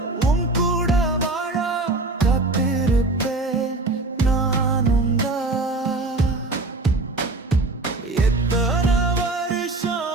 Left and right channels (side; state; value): left; quieter; 3.1 dB